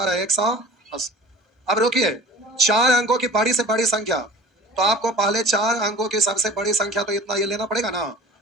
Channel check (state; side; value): normal; both; correlation 0.42